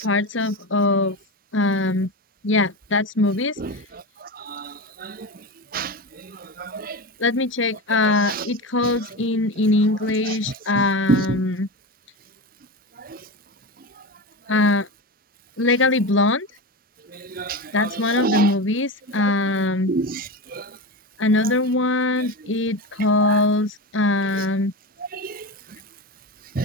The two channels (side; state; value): both; normal; correlation 0.22